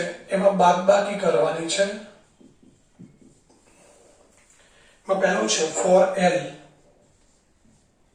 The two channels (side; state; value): both; identical; correlation 1.00